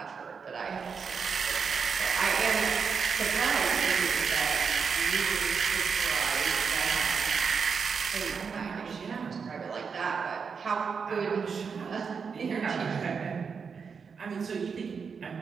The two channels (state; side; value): quieter; left; 5.8 dB